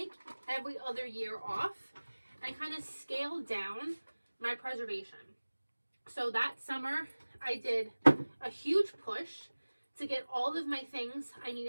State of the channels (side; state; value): both; inverted; correlation -1.00